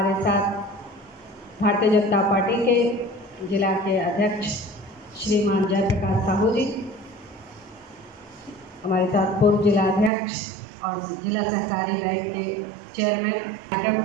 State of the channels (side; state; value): left; drops out; at 10.1 s